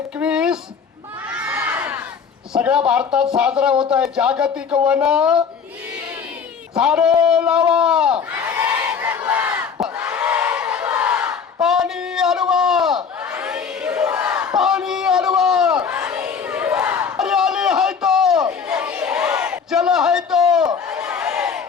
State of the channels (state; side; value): quieter; right; 6.3 dB